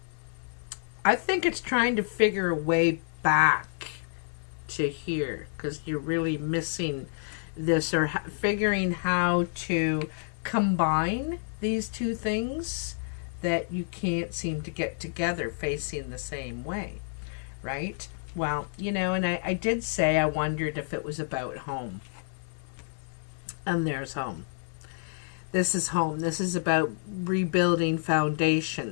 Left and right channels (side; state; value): right; silent; digital silence